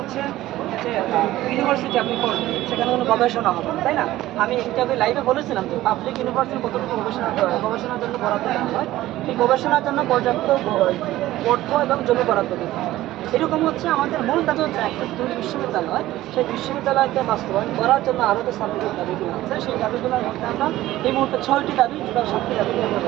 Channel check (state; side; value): quieter; left; 15.6 dB